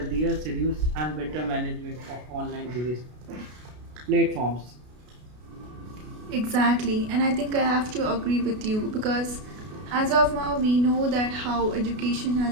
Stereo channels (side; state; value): left; late; 33 ms